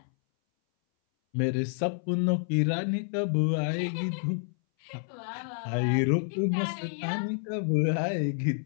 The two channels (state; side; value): silent; right; 59 dB below the other